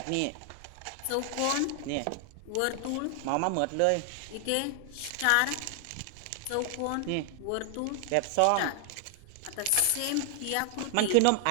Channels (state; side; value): different; both; correlation 0.00